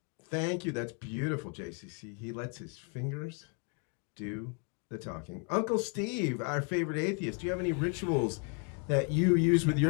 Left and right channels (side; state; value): right; quieter; 38.4 dB